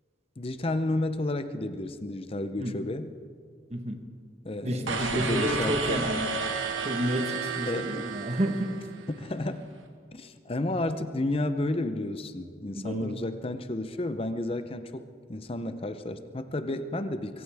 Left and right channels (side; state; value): both; normal; correlation 0.60